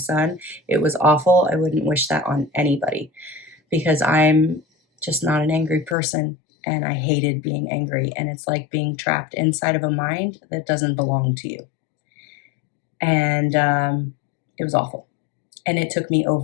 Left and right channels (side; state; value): right; drops out; at 6.0 s